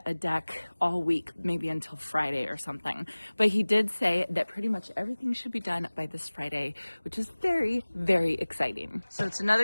a deck all week, maybe until Friday or something. But he did say that pretty much everything should be done by this Friday, which is very, very exciting. So it's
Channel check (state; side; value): inverted; both; correlation -1.00